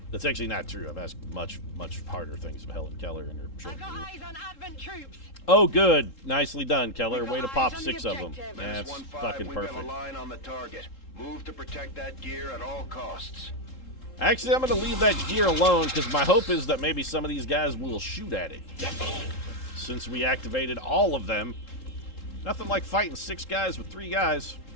that's actually not true. I've asked much, much harder things of Helen Keller in her short career. Eyes on Advent troops. Oh, good. Nicely done, Keller. Way to pop 6 of them. That's That's fucking perfect. We've got a line on the target. Move to protect that gear at all costs. Actually, I'm going to leave that gear alone because my hope is that maybe some of these guys will shoot at it. Since we activated all of them. Nothing like fighting 6 guys with 3 guys.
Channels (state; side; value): late; right; 3.7 ms